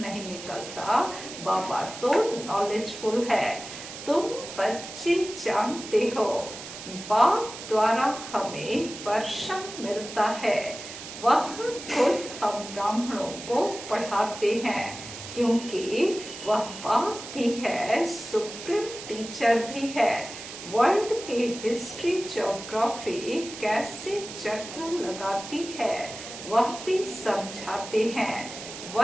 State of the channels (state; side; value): noise; right; hiss, 11 dB below the sound